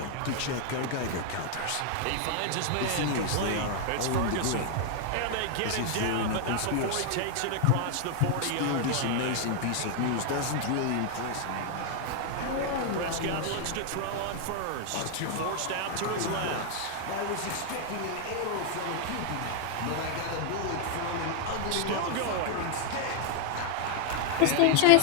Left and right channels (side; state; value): both; different; correlation 0.00